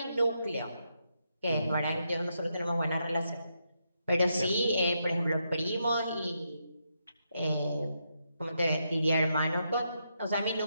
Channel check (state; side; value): inverted; both; correlation -0.82